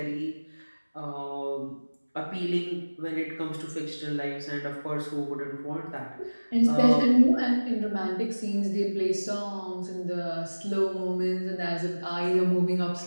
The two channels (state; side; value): inverted; both; correlation -1.00